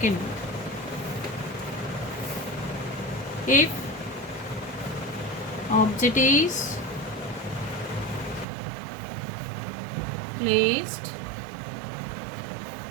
if object is placed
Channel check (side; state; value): left; drops out; at 8.5 s